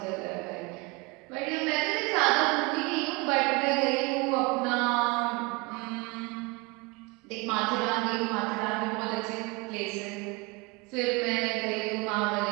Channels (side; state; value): left; quieter; 26.8 dB